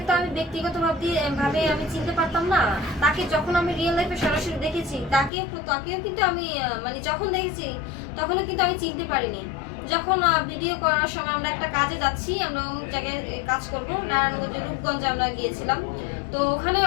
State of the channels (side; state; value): right; drops out; at 5.3 s